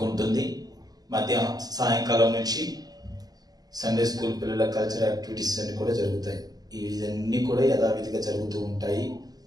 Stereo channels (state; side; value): late; left; 0.19 ms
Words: సాయంకాలం నుంచి సండే స్కూల్ పిల్లల కల్చరల్ యాక్టివిటీస్ అన్నీ కూడా జరుగుతాయి. ఇవన్నీ కూడా యథావిధిగా జరుగుతూ ఉంటాయి.